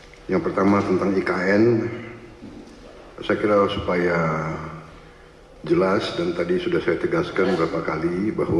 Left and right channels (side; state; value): both; identical; correlation 1.00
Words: Yang pertama tentang IKN, saya kira supaya jelas dan tadi sudah saya tegaskan beberapa kali